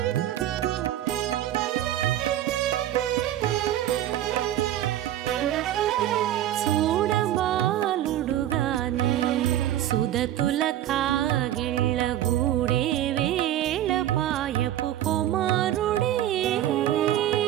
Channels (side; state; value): left; quieter; 12.6 dB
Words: చూడబాలుడుగాని సుదతుల కాగిళ్ళ గూడే వేళ పాయపు కుమారుడే.